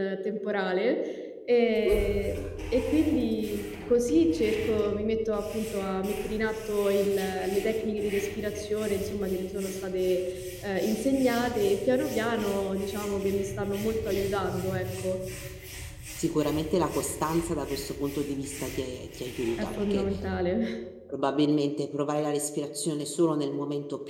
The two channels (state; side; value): identical; both; correlation 1.00